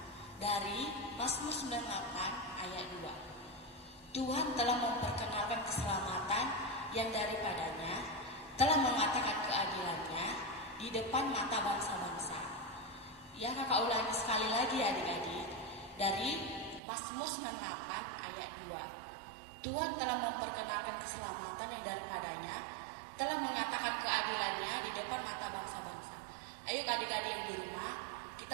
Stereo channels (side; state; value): left; drops out; at 16.8 s